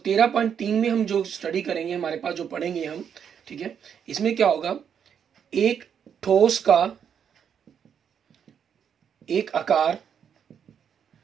में हम जो स्टडी करेंगे, हमारे पास जो पढ़ेंगे हम, ठीक है, इसमें क्या होगा, एक ठोस का एक आकार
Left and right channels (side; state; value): left; quieter; 7.9 dB